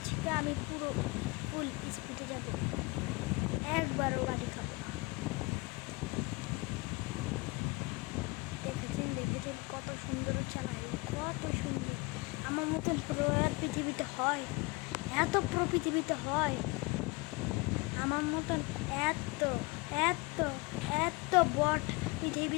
আমি পুরো ফুল স্পিডে যাব, একবারও গাড়ি খাবো না। দেখেছেন কত সুন্দর চালাই, কত সুন্দর। আমার মতন প্রো আর পৃথিবীতে হয়? এত প্রো পৃথিবীতে হয়? আমার মতন এত এত এত বট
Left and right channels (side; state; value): right; quieter; 26.3 dB